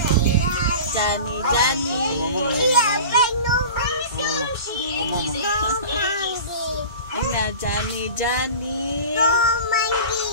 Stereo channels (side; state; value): both; inverted; correlation -0.36